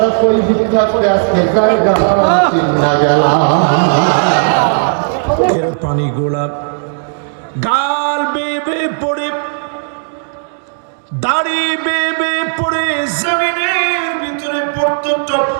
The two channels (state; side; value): silent; left; digital silence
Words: কই ভিক্ষা করে আজকে জায়গা চিন্না গেলাম। পানি গোলাপ গাল বেবে পড়ে, দাড়ি বেবে পড়ে জমিনের ভিতরে পড়তো টপ